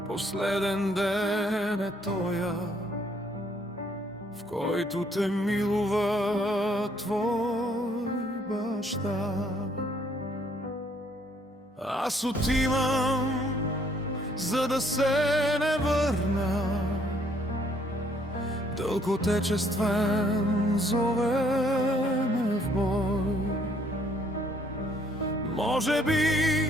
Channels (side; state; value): both; normal; correlation 0.66